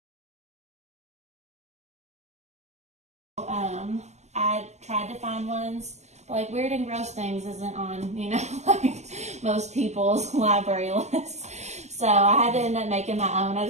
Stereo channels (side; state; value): left; late; 0.33 ms